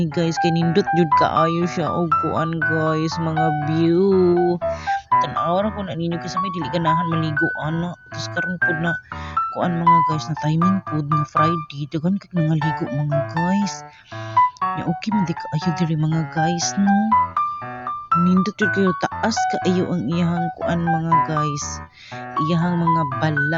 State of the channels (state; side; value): identical; both; correlation 1.00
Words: guys kay nindot jud kaayo siya og kuan guys, mga view. Tan-aw ra ko na ninyo kasi may dili ganahan maligo ana. Tapos karon pud na kuan mga guys na timing pud nga Friday, daghan kay nangaligo mga guys. Ya okay man di kaayo diri mga guys no. Nindot jud kayo taas kaayo ang iyahang kuan mga guys. Iyahang mga